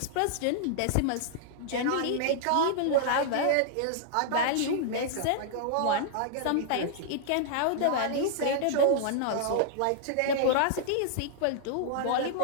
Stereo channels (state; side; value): different; both; correlation -0.01